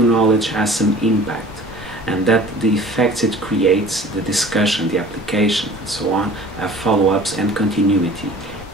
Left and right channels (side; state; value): both; normal; correlation 0.45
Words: knowledge has some impact, and that the effects it creates, the discussion, the application, and so on, have follow-ups and continuity.